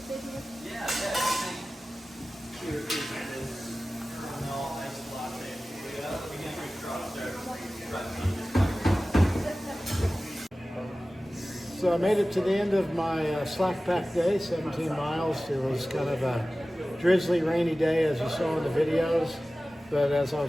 Yeah, So I made it to the end of my slack pack day, 17 miles. It was kind of a drizzly, rainy day, as you saw in the videos. But as I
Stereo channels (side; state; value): both; normal; correlation 0.96